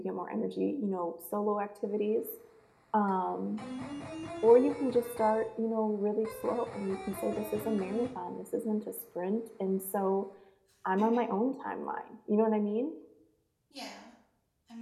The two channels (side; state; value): both; identical; correlation 1.00